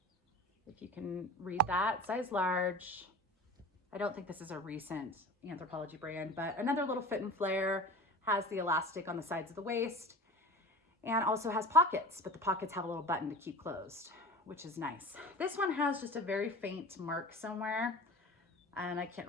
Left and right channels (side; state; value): both; normal; correlation 0.36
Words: if you can read that, size large. I don't think this is a recent Anthropology brand, but another little fit and flare, has the elastic on the sides of the waist, and also has pockets, but the pockets have a little button to keep closed, which is nice. This one has just a very faint mark somewhere, and I can't